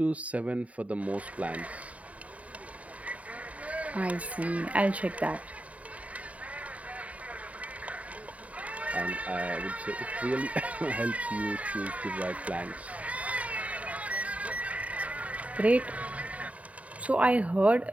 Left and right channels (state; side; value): late; left; 0.068 ms